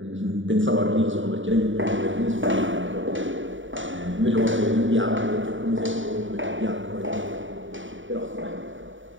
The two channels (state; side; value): late; left; 0.56 ms